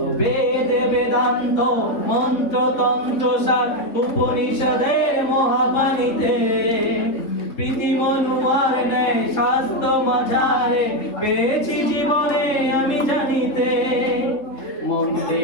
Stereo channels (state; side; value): late; right; 3.6 ms